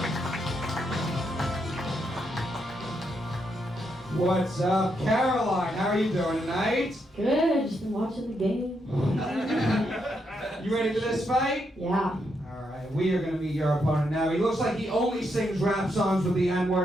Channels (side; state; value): both; normal; correlation 0.80